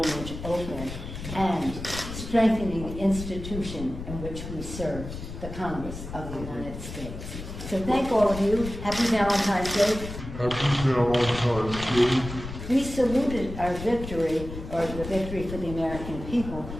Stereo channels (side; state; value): left; noise; rumble, 9 dB below the sound